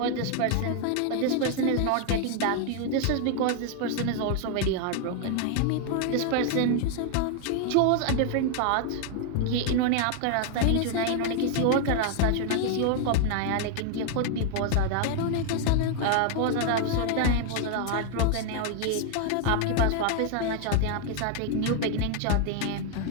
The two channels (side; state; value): both; different; correlation 0.00